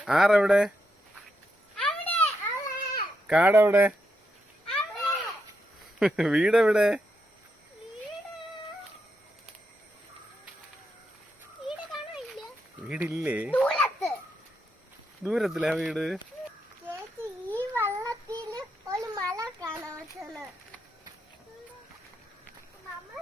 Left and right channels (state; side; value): normal; both; correlation 0.82